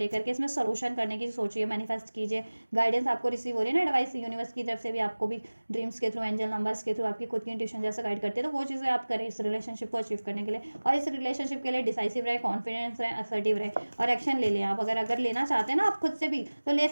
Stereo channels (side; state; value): both; inverted; correlation -1.00